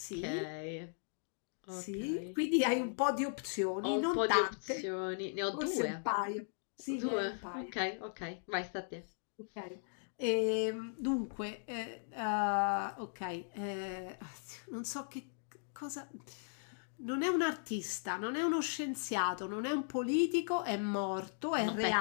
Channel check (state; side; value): silent; right; digital silence